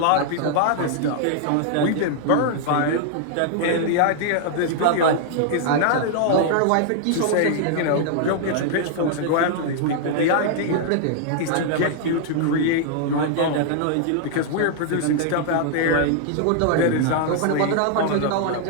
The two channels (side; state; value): both; different; correlation -0.01